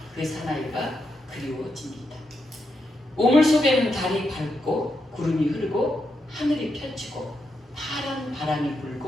그 사나이가 그리워집니다. 우물 속에는 달이 밝고 구름이 흐르고 하늘이 펼치고 파란 바람이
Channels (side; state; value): both; normal; correlation 0.83